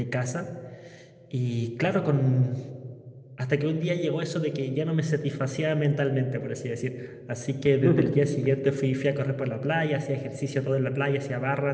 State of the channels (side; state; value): both; identical; correlation 1.00